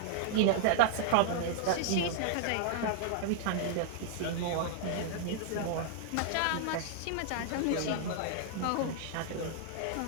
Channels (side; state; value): both; different; correlation 0.00